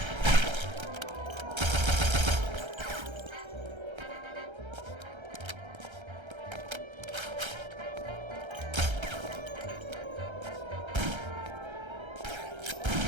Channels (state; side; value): late; left; 1.3 ms